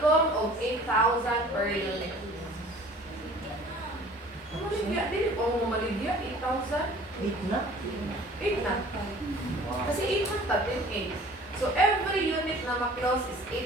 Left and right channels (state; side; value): normal; both; correlation 0.48